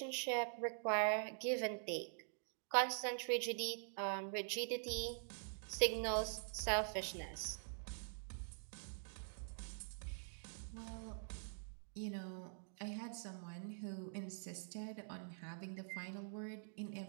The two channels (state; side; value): silent; left; digital silence